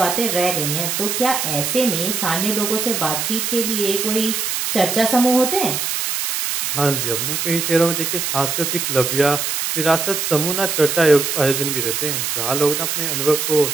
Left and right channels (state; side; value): noise; right; hiss, 1 dB below the sound